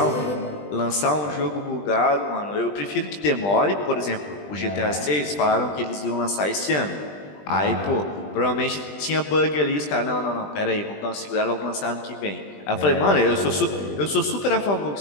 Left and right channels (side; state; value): right; late; 20 ms